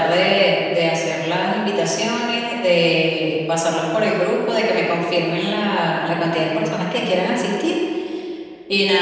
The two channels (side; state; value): both; identical; correlation 1.00